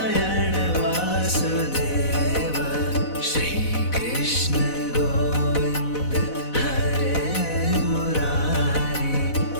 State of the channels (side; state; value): right; late; 4.0 ms